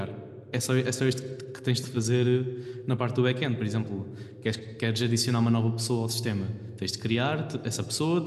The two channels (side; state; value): both; identical; correlation 1.00